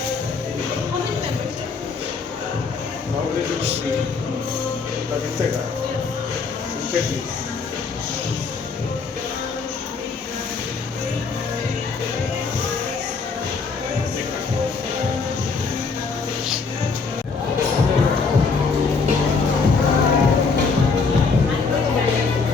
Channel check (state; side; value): quieter; right; 4.7 dB